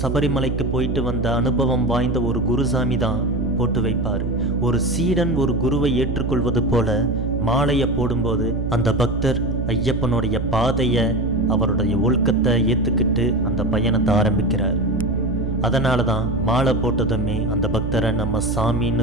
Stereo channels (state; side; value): noise; right; hum, 2 dB below the sound